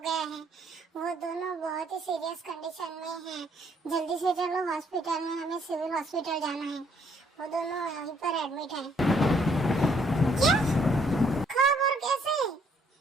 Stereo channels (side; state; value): both; normal; correlation 0.67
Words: गया है। वो दोनों बहुत ही सीरियस कंडीशन में हैं। जल्दी से चलो हॉस्पिटल में, हमें सिविल हॉस्पिटल जाना है। वो दोनों यहीं पर एडमिट हैं। क्या? कब और कैसे?